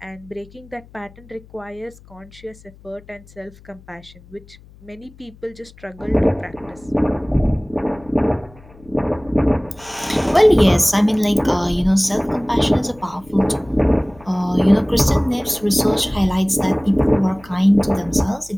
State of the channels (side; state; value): left; noise; hum, 24 dB below the sound